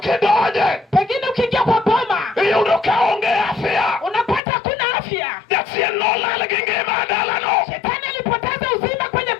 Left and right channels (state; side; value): drops out; right; at 4.4 s